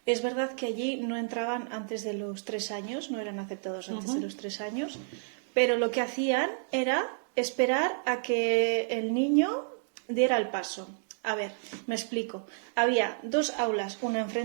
Es verdad que allí no entraban antes de los 3 años, no eran aceptados antes de los 3 años, pero lo que hacían era esperar a que el niño diera el paso. A ver, me explico. Había 2 aulas, una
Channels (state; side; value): silent; left; digital silence